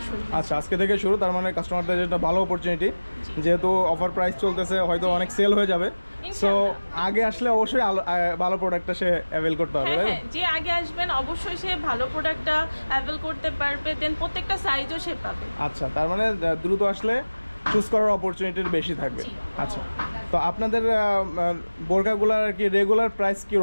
শুরু। আচ্ছা, আজকে থেকে শুরু। তার মানে কাস্টমারদের একটা ভালো অপরচুনিটি, যেহেতু অফার প্রাইস চলতেছে, হয়তো অনেক সেল হয়ে যাবে। সো আগে আসলে অবশ্যই ভালো প্রোডাক্টটা সে অ্যাভেল করতে হবে, হ্যাঁ, তাই তো? হ্যাঁ, যে আগে আসবেন অবশ্যই সে ভালো প্রোডাক্টটা অ্যাভেল করতে পারবে, দেন প্রত্যেকটা সাইজও সে পাবে। আচ্ছা, তার মানে দ্রুত আসলে চুজ করার অপরচুনিটি বেশি থাকবে। জি। আচ্ছা, তো আপনাদের বোরকাগুলোর আর কি রেগুলার প্রাইস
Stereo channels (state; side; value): inverted; both; correlation -1.00